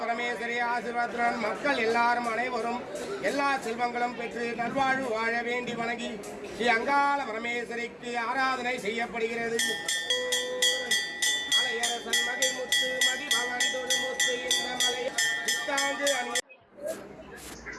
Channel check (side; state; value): both; identical; correlation 1.00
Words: பரமேஸ்வரி ஆசீர்வாதத்துடன் மக்கள் எல்லாரும் அனைவரும் எல்லா செல்வங்களும் பெற்று நல்வாழ்வு வாழ வேண்டி வணங்கி ஸ்ரீ அங்காள பரமேஸ்வரிக்கு ஆராதனை செய்யப்படுகிறது. மலையரசன் மகிழ்முத்து மதிபவன் தொழுமுத்து இந்த மலை புத்தாண்டு